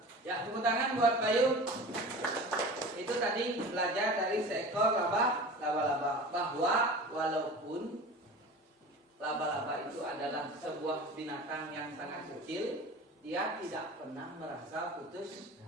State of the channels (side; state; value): both; normal; correlation 0.37